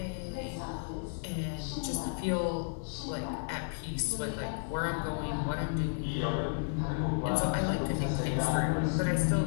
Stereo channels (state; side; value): silent; right; digital silence